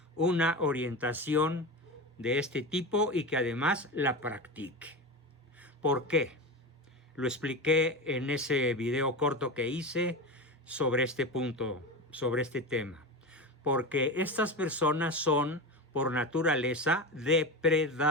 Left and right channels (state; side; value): normal; both; correlation 0.23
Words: una orientación de este tipo y que además la practique. ¿Por qué? Lo expliqué en ese video corto que hice sobre este punto, sobre este tema. Porque estas personas son, por naturaleza,